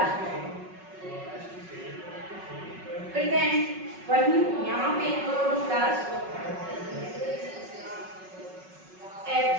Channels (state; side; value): late; left; 5.4 ms